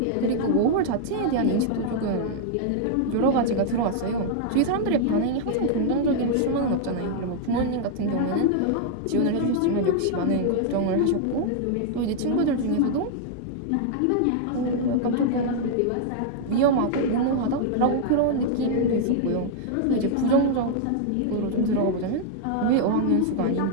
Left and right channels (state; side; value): different; both; correlation -0.01